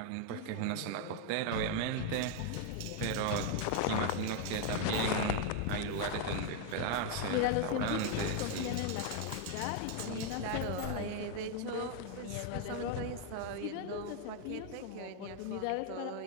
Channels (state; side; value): different; both; correlation 0.00